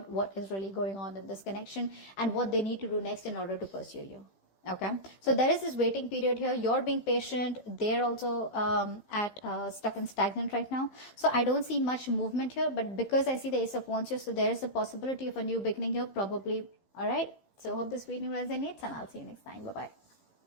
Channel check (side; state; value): right; late; 15 ms